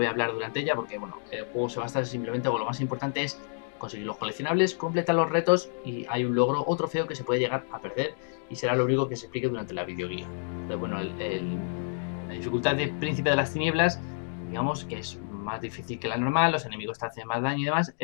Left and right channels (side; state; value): right; silent; digital silence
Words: a hablar durante ella porque bueno, el juego se basa simplemente, o lo más importante es conseguir los coleccionables, completar los retos y hay un logro o trofeo que se puede llegar a perder y será lo único que se explique durante la videoguía. Entonces bueno, la dificultad de Príncipe de las Tinieblas, digamos que es más difícil que la normal, los enemigos te hacen más daño y demás,